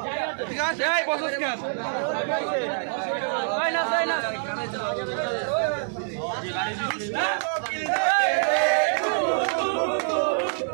ঠিক আছে, এই বসস কেন?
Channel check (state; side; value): silent; left; digital silence